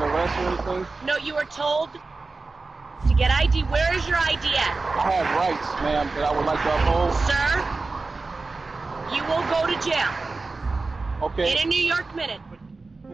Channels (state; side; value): quieter; left; 3.7 dB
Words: arrest or anything? No, you were told to get ID. Where is your ID at? I have rights, ma'am, that I would like to uphold. Sir, you will go to jail. Okay. In a New York minute.